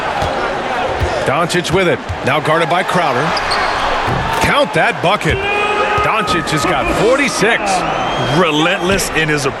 Doncic with it. Now guarded by Crowder. Count that bucket. Doncic has got 46. Relentless in his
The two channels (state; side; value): identical; both; correlation 1.00